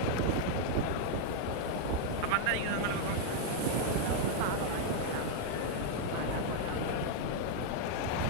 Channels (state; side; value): different; both; correlation 0.00